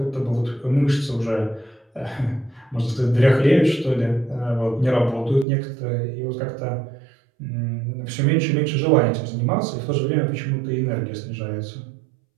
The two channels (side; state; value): left; drops out; at 5.5 s